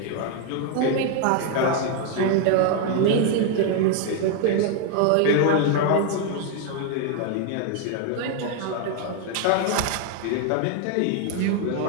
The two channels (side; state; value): both; different; correlation 0.00